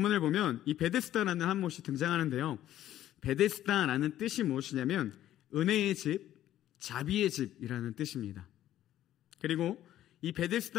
보면 이 베데스다라는 한 못이 등장하는데요, 베데스다라는 뜻이 무엇이냐면 은혜의 집, 자비의 집이라는 뜻입니다. 그리고 이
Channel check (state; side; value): quieter; right; 12.6 dB